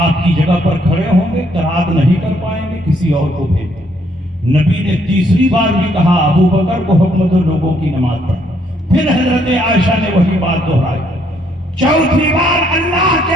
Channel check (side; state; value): both; normal; correlation 0.69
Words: آپ کی جگہ پر کھڑے ہوں گے، قرات نہیں کر پائیں گے، کسی اور کو بھیج دیں۔ نبی نے تیسری بار بھی کہا ابو بکر کو حکم دو لوگوں کی نماز پڑھو۔ پھر حضرت عائشہ نے وہی بات دہرائی۔ چوتھی بار اللہ